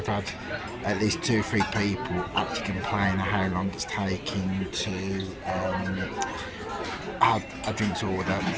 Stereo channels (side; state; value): both; identical; correlation 1.00